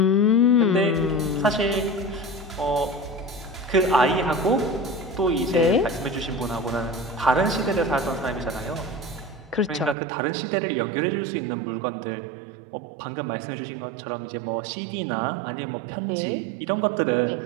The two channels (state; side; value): drops out; left; at 10.0 s